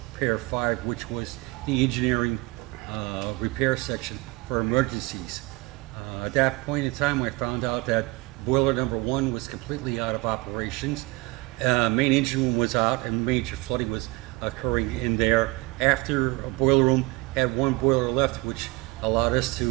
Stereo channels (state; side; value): quieter; left; 23.3 dB